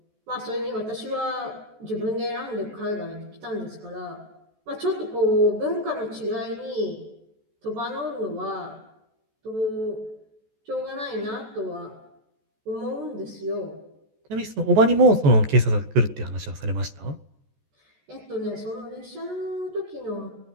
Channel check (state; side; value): late; left; 14 ms